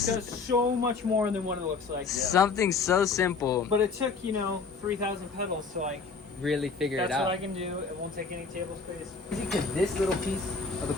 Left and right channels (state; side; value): quieter; right; 4.8 dB